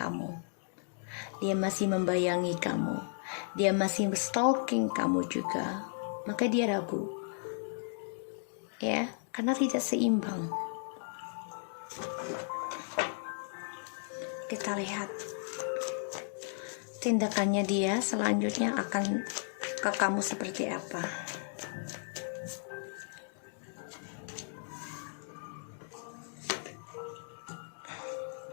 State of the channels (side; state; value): right; silent; digital silence